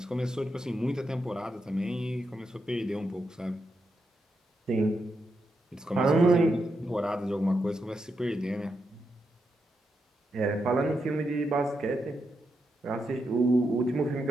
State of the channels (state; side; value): normal; both; correlation 0.84